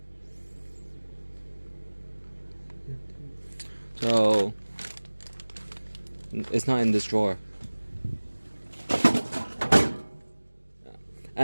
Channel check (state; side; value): inverted; both; correlation -1.00